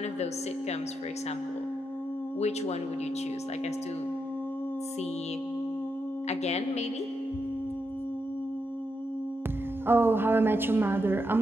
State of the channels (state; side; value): normal; both; correlation 0.84